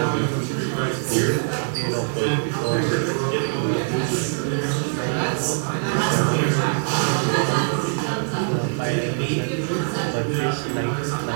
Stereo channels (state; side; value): silent; left; 63 dB below the other